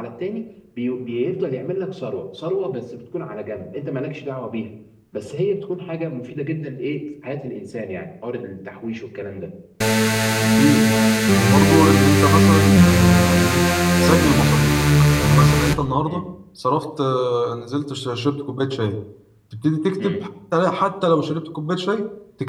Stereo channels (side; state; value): both; identical; correlation 1.00